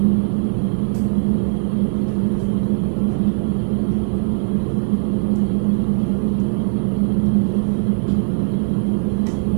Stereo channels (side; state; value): left; silent; digital silence